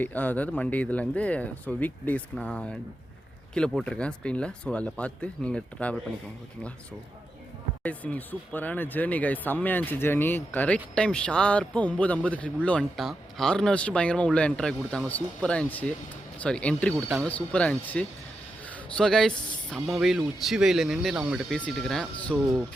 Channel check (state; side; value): normal; both; correlation 0.87